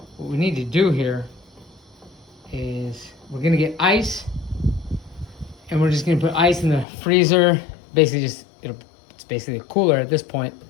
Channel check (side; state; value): right; drops out; at 6.9 s